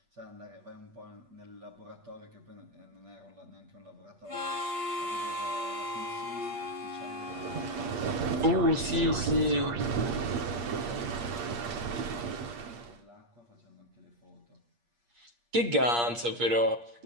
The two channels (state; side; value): late; left; 8.5 ms